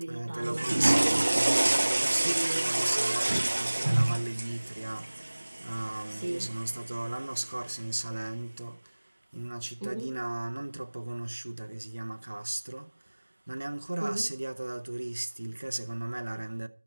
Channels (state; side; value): inverted; both; correlation -1.00